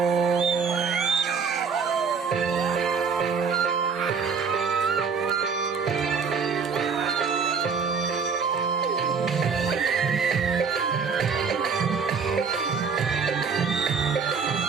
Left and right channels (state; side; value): quieter; left; 5.7 dB